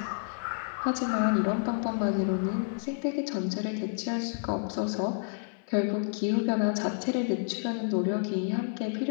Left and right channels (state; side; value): silent; right; 56 dB below the other